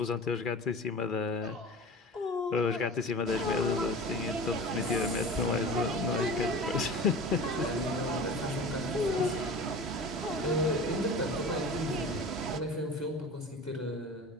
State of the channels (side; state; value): both; normal; correlation 0.36